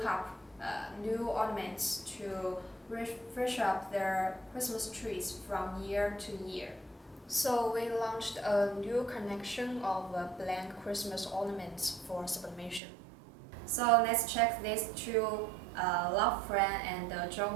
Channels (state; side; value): drops out; left; at 12.8 s